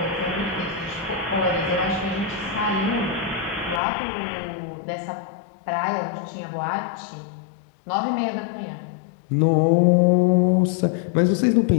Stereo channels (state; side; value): drops out; right; at 3.8 s